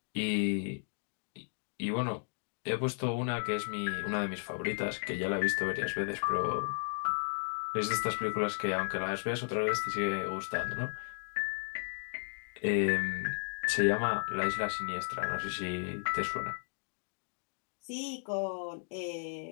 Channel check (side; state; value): right; silent; digital silence